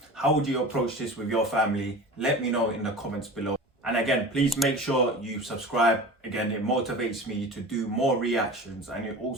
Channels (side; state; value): both; normal; correlation 0.35